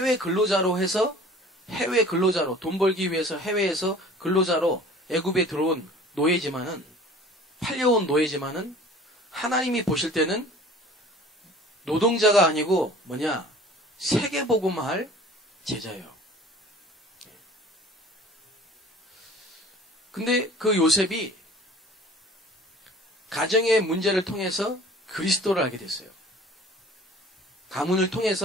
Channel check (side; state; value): both; normal; correlation 0.46